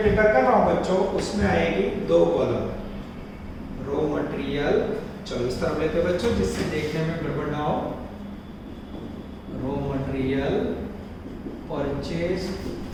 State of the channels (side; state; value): both; identical; correlation 1.00